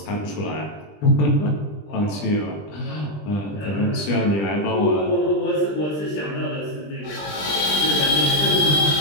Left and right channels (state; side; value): late; right; 20 ms